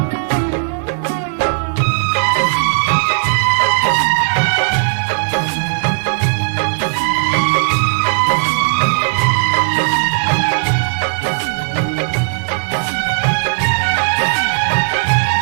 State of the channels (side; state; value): left; silent; digital silence